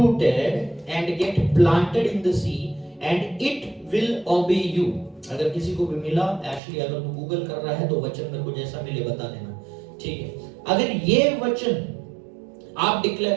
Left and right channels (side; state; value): left; drops out; at 6.6 s